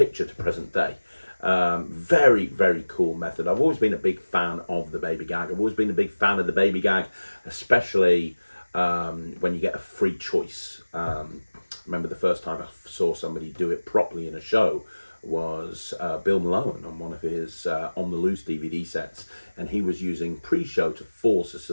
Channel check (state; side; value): inverted; both; correlation -1.00